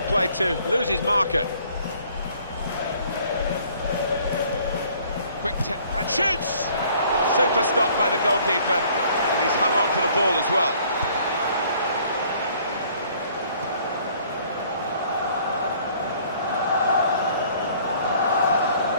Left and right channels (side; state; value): both; inverted; correlation -0.58